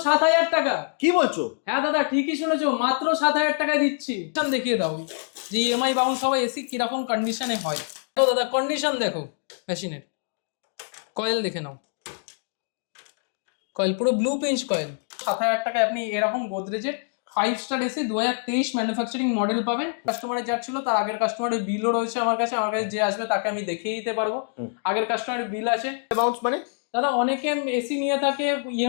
7,000 টাকা। কি বলছো? হ্যাঁ দাদা ঠিকই শুনেছো, মাত্র 7,000 টাকায় দিচ্ছি। দেখিয়ে দাও যে ইএমআই বাউন্স হওয়া এসি কিরকম কন্ডিশনে হয়। তো দাদা কন্ডিশন দেখো মেশিনের, কয়েল দেখে নাও, কয়েল পুরো ব্লু পিঞ্চ কয়েল। 7,000 টাকায় আপনি এরকম গোদরেজের 5 স্টার এসি 2023 ম্যানুফ্যাকচারিং মডেল পাবেন। কাস্টমারের যার ছিল তার আগের কাস্টমারের বিলও রয়েছে আমার কাছে যে আসবে তাকে আমি দেখিয়ে দিতে পারবো। আগের কাস্টমারের বিল আছে। বাউন্স মানে দাদা অনেকে এসি নিয়ে থাকে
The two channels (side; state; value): right; silent; 60 dB below the other